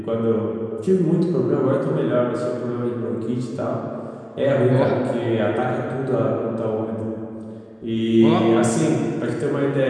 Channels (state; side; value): identical; both; correlation 1.00